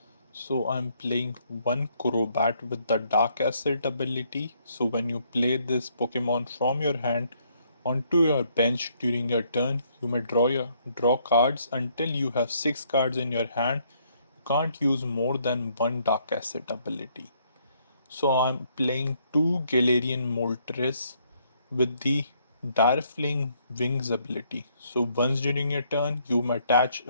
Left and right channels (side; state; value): both; inverted; correlation -0.69